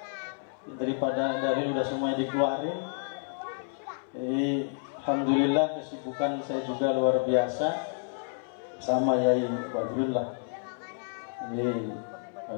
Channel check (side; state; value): right; silent; 58 dB below the other